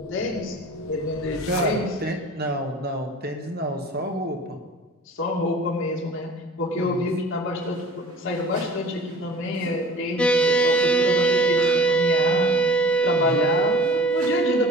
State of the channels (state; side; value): normal; both; correlation 0.43